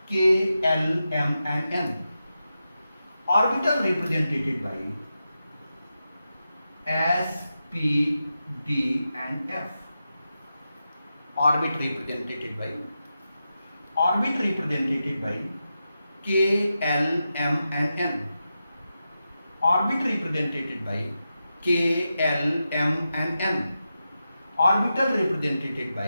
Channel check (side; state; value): both; inverted; correlation -0.90